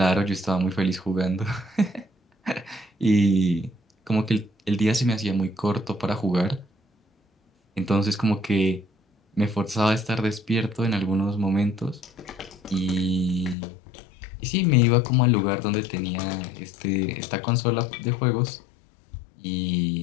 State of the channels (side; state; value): right; drops out; at 13.6 s